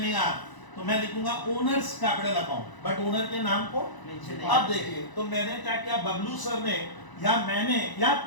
तो मैं लिखूंगा owners capital account, but owner के नाम को अब देखिए, तो मैंने क्या किया, बबलू सर ने या मैंने या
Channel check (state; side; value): late; right; 1.0 ms